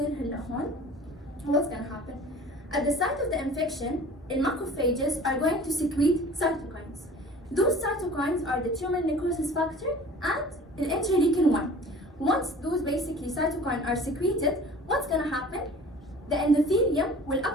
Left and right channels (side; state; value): both; normal; correlation 0.44